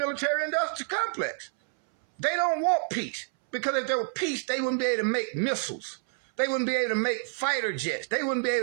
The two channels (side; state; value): left; silent; 59 dB below the other